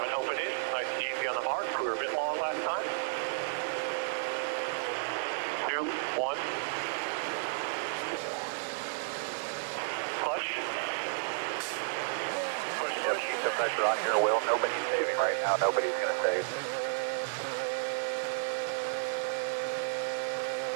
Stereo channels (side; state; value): left; silent; digital silence